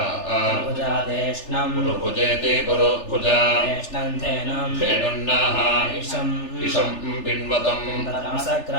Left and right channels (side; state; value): right; late; 3.4 ms